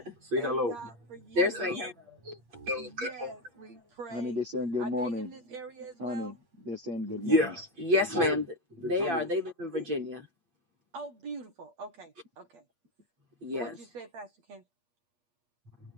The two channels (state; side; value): late; left; 8.5 ms